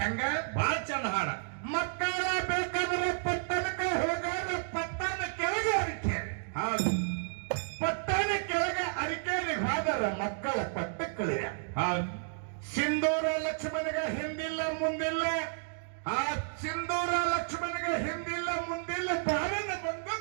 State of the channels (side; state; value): left; silent; digital silence